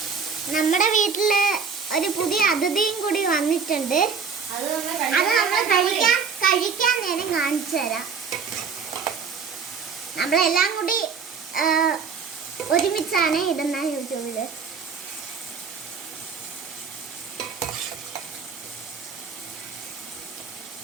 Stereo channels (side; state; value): left; quieter; 5.8 dB